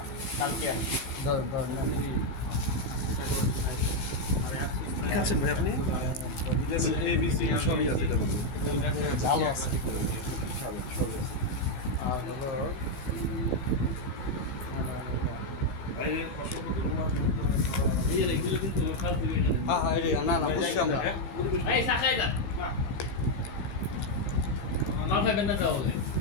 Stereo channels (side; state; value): right; late; 16 ms